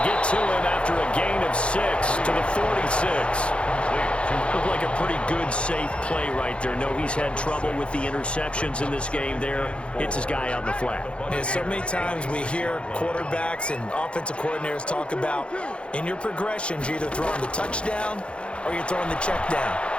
get to him after a gain of 6 to the 46. Looked like a pretty good, safe play right there. No, he's had trouble with the interceptions in this game there. Hits his guy out in the flat. Yeah, so many times we hear quarterbacks and offensive coordinators talk about in your progressions, you're either throwing the touchdown or you're throwing the check down.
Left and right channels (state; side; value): late; right; 0.058 ms